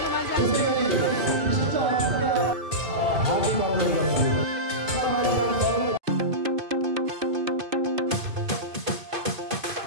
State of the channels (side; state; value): left; late; 2.5 ms